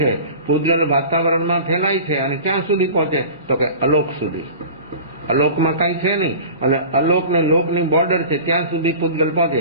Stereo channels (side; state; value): both; inverted; correlation -0.38